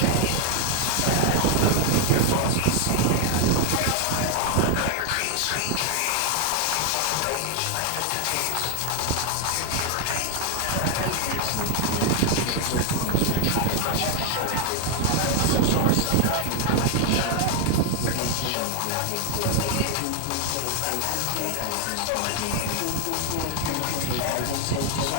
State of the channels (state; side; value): different; both; correlation 0.00